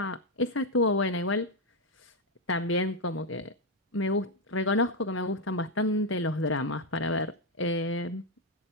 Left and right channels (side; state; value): both; normal; correlation 0.04